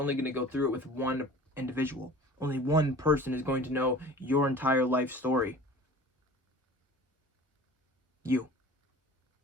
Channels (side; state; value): both; normal; correlation 0.43